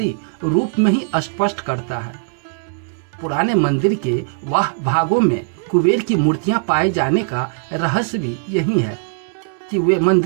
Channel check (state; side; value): silent; left; 66 dB below the other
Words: रूप में ही स्पष्ट करता है। पुराने मंदिर के वह भागों में कुबेर की मूर्तियां पाए जाने का रहस्य भी यही है कि वे